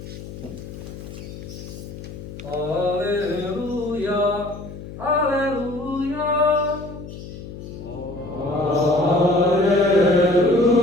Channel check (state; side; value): noise; left; hum, 12 dB below the sound